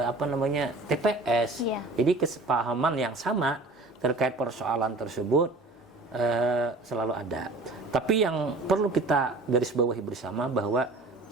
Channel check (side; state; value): left; quieter; 3.1 dB